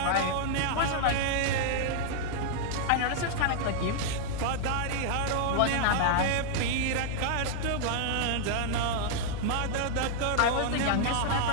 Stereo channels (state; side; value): different; both; correlation -0.01